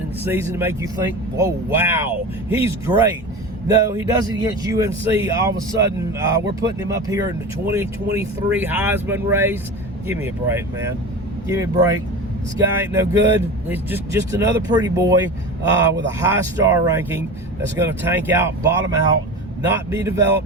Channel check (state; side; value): normal; both; correlation 0.30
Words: the season to make you think, oh, wow, he's great. No, he does it against UNC. All of a sudden, we're putting him up here in the 2023 Heisman race. Give me a break, man. Give me a break. This guy ain't no good. He's just another pretty boy with a high star ranking that's going to tank out, bottom out, not be